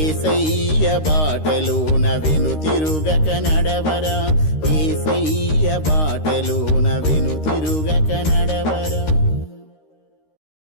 బాటలోన వెనుతిరుగక నడవరా, యేసయ్య బాటలోన వెనుతిరుగక నడవరా.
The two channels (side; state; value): right; late; 13 ms